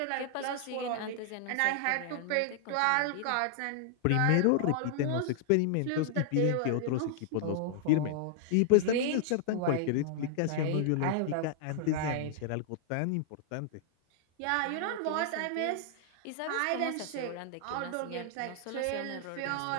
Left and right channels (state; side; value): different; both; correlation -0.01